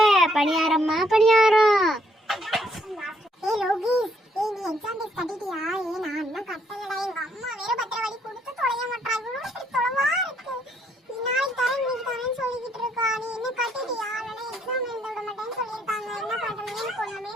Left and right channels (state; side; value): normal; both; correlation 0.70